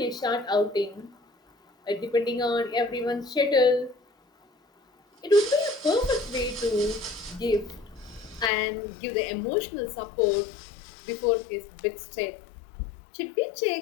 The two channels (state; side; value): drops out; right; at 8.5 s